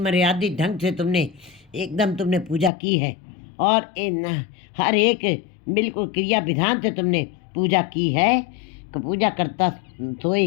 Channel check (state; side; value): drops out; right; at 2.7 s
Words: ढंग से तुमने एकदम तुमने पूजा की है, और हर एक बिल्कुल क्रिया विधान से तुमने पूजा की है। पूजा करता